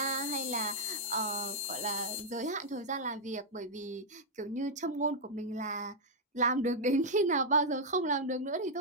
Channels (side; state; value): both; normal; correlation -0.04